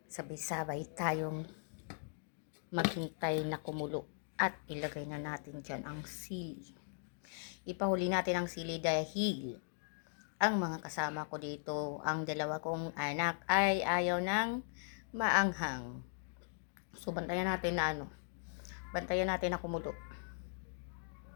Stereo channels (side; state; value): right; silent; digital silence